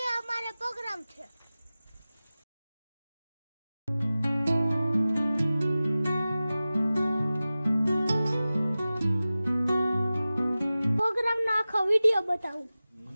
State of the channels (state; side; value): inverted; both; correlation -0.96